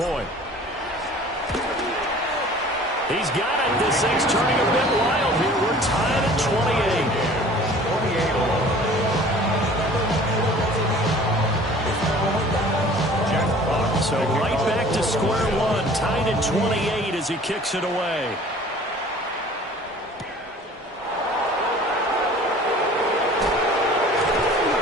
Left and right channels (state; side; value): normal; both; correlation 0.47